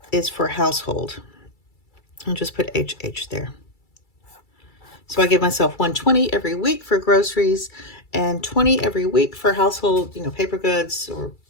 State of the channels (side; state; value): right; late; 2.3 ms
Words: is for household. I'll just put HH there. So I give myself $120 every week for groceries and $20 every week for household, paper goods or,